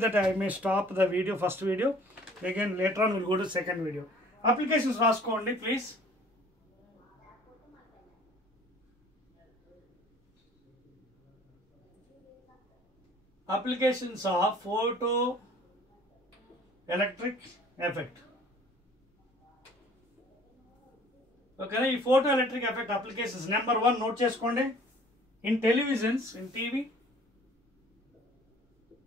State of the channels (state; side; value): normal; both; correlation 0.52